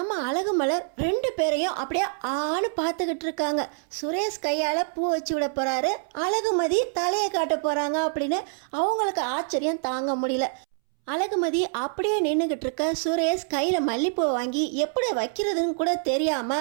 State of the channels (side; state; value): left; silent; 61 dB below the other